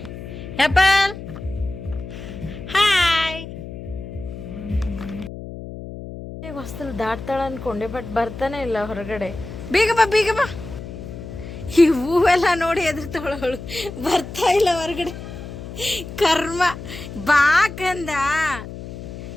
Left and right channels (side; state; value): left; noise; hum, 11 dB below the sound